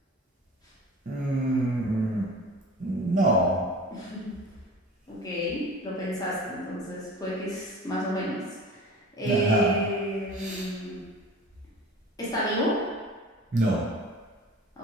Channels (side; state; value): both; normal; correlation 0.39